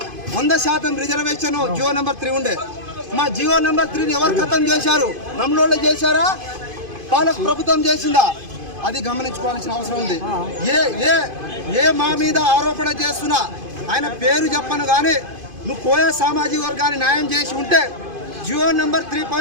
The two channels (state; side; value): late; left; 2.5 ms